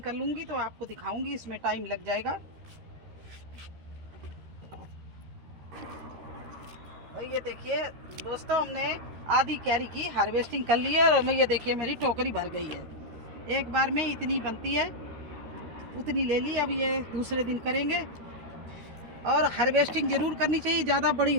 कर लूँगी तो आपको दिखाऊंगी, इसमें टाइम लग जाएगा। और ये देखिए दोस्तों, हमने आधी क्यारी की हार्वेस्टिंग कर ली है और ये देखिए मेरी टोकरी भर गई है। एक बार में इतनी बनती है उतनी ले ली। अब ये दूसरे दिन करेंगे। और हार्वेस्टिंग ज़रूर करनी चाहिए, ज़्यादा बड़ी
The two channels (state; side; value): late; left; 13 ms